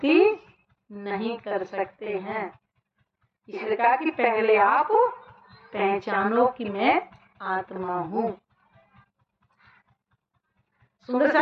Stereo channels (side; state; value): both; identical; correlation 1.00